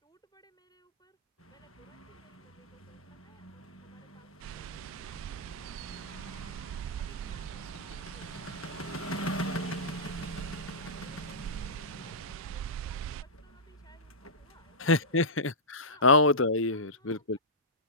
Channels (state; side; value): normal; both; correlation -0.15